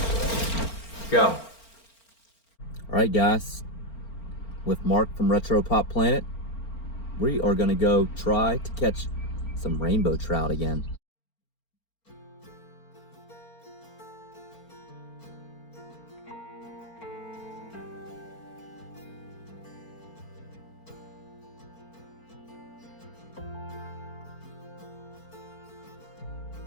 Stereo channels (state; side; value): late; right; 4.4 ms